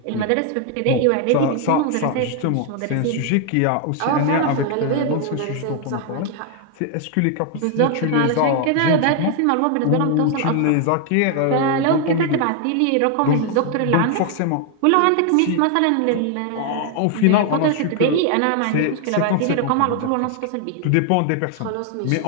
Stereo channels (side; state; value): both; different; correlation 0.00